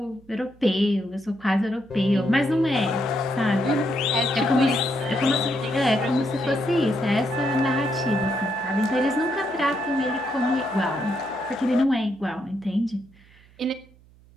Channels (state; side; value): noise; right; hum, 27 dB below the sound